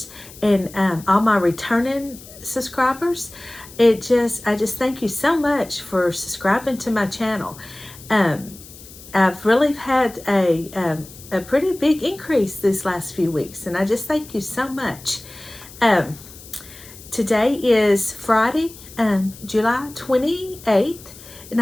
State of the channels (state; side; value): noise; left; hiss, 19 dB below the sound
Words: and all my returning subscribers. I just thank you so much for subscribing to my channel. I've really had a pretty big increase these last few weeks, and I just thank you so much. Today is Friday, July 28th, and